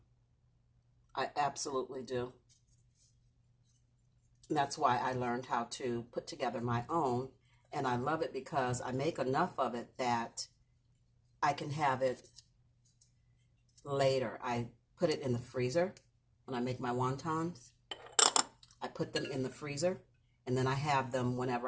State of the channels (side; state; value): both; identical; correlation 1.00